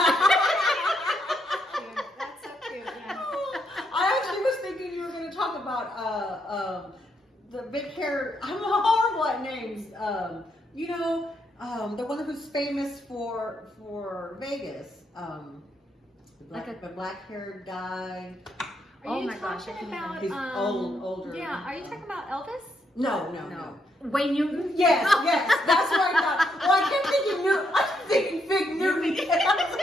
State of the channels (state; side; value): normal; both; correlation 0.77